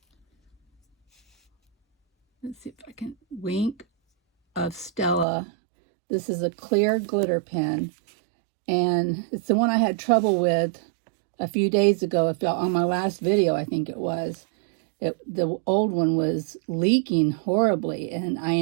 Let's see if I can, Wink of Stella. This is a clear glitter pen. And it's the one I had trouble with a few days ago, on my last video, I think it was. The old one was leaking horribly, and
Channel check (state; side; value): drops out; left; at 5.2 s